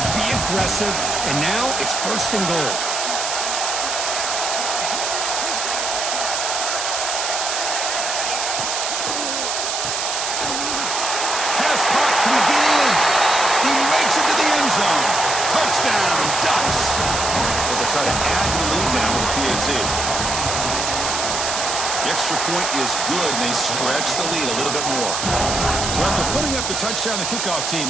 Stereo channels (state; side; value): noise; right; hiss, 2 dB below the sound